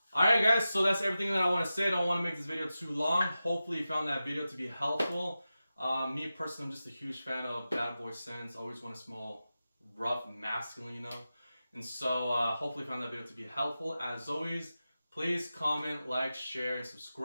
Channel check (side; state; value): both; inverted; correlation -0.93